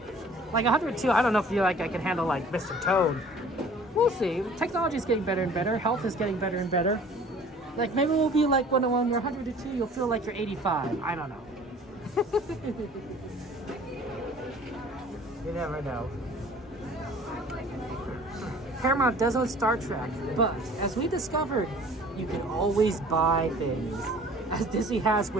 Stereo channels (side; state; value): both; normal; correlation 0.49